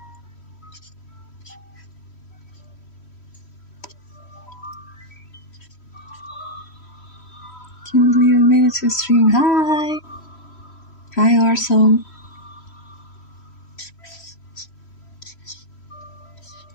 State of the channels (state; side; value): late; right; 3.1 ms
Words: Can't believe I made it to stream. Hi. Hi, Arso.